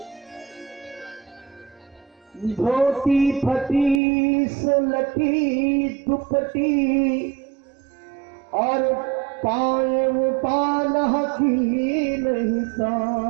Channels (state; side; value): drops out; left; at 4.0 s